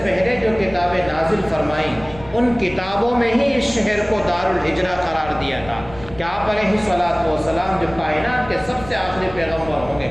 پہلے جو کتابیں نازل فرمائیں ان کتابوں میں ہی اس شہر کو دار الہجرہ قرار دیا تھا کہ آپ علیہ الصلوۃ والسلام جو کائنات کے سب سے آخری پیغمبر ہوں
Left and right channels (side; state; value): left; noise; rumble, 17 dB below the sound